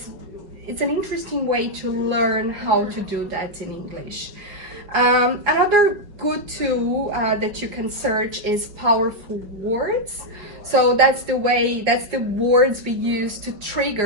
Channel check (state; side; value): late; left; 5.3 ms